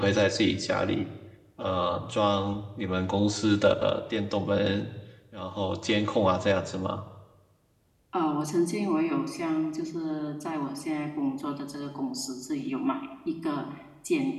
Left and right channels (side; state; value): both; identical; correlation 1.00